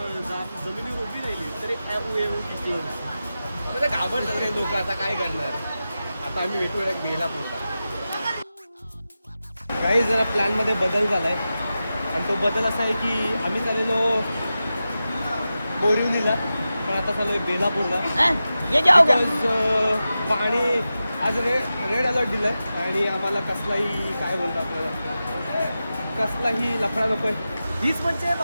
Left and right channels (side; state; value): both; inverted; correlation -0.93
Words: जमिनीवर उभी राहिली तरी किती म्हणजे घाबरतात काही लोक. आता काय करणार. आता आम्ही भेटूया एक बेलापूरला. काही जरा प्लॅनमध्ये बदल झालाय आणि तो बदल असा आहे की आम्ही चाललेलो बोरिवलीला पण आता चाललोय बेलापूरला. पाणी आज रेड अलर्ट दिलाय आणि आम्हाला कसलाही काय बोलतो आपल्याला कसलाही लफडा नको. हीच म्हणजे